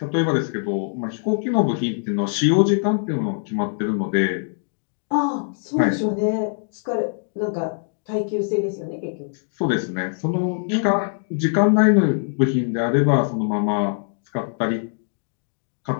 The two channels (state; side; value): silent; right; digital silence